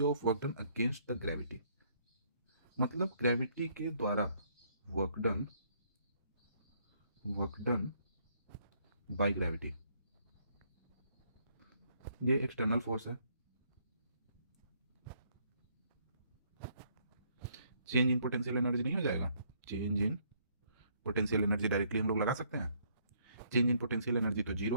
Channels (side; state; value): both; inverted; correlation -0.68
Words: of work done against the gravity, मतलब ग्रेविटी के द्वारा वर्क डन बाय ग्रेविटी, ये एक्सटर्नल फोर्स है। चेंज इन पोटेंशियल एनर्जी नहीं हो जाएगा, change in potential energy directly हम लोग लगा सकते हैं। चेंज इन पोटेंशियल एनर्जी तो